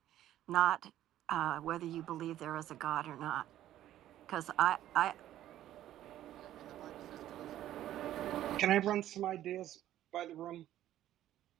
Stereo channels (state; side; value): quieter; left; 12.8 dB